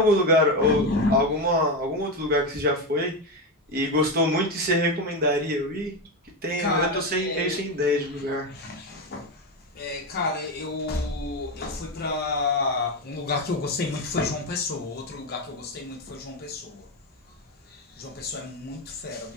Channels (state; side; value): normal; both; correlation 0.14